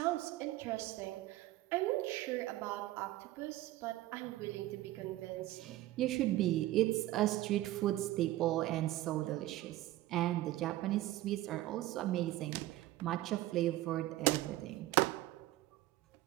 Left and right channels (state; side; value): quieter; left; 16.2 dB